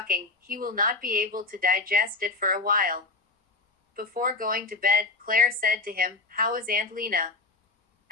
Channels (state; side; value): quieter; right; 3.6 dB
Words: he will not be able to digest it for a while. Before going to bed, Claire said to him, "How is Aunt Lena?"